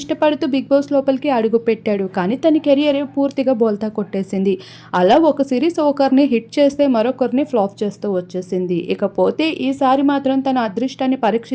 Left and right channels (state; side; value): identical; both; correlation 1.00